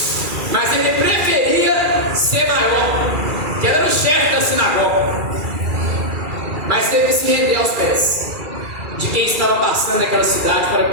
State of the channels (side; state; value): left; late; 2.3 ms